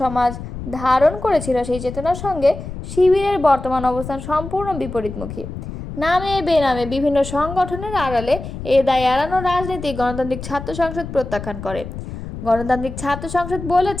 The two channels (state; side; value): noise; left; rumble, 10 dB below the sound